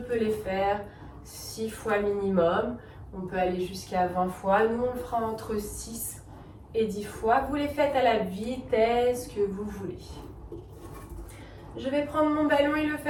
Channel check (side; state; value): both; identical; correlation 1.00